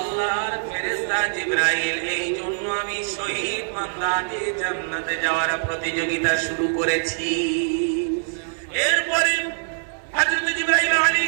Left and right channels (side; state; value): left; silent; 63 dB below the other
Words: ফেরেশতা জিবরাইল, এই জন্য আমি শহীদ বান্দাকে জান্নাতে যাওয়ার প্রতিযোগিতা শুরু করেছি। এরপরে হযরত জিবরাইল